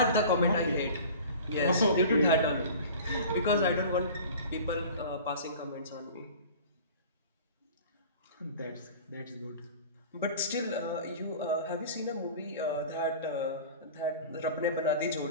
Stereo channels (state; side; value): inverted; both; correlation -0.40